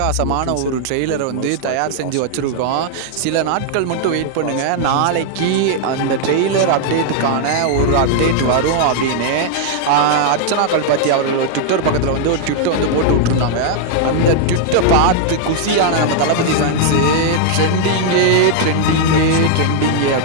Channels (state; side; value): different; both; correlation 0.00